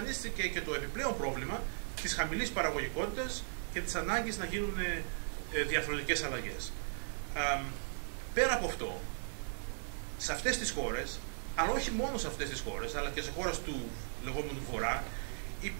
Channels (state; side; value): silent; left; 53 dB below the other